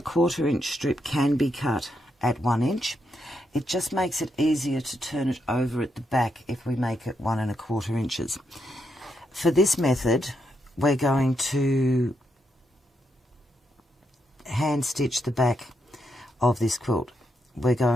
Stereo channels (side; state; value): both; normal; correlation 0.80